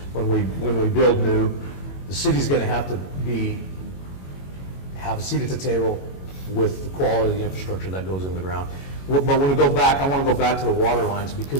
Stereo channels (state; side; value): late; right; 21 ms